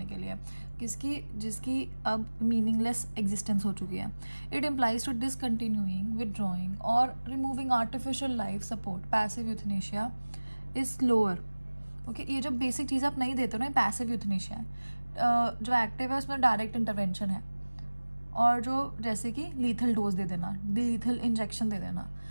के लिए, जिसकी अब मीनिंगलेस एग्जिस्टेंस हो चुकी है. It implies to discontinuing, withdrawing और removing artificial life support. Passive euthanasia is slower. Okay, ये जो बेसिक चीज़ आप नहीं देते हो ना, पैसिव यूथनेशिया है. जो एक्टिव है उसमें डायरेक्ट इंटरवेंशन है, और जो जैसे कि लीथल डोज दे देना, लीथल इंजेक्शन दे देना.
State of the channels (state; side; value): inverted; both; correlation -1.00